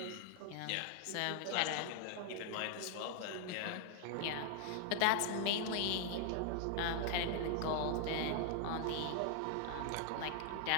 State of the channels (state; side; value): different; both; correlation 0.00